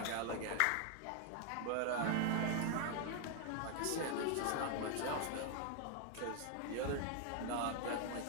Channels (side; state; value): both; different; correlation 0.00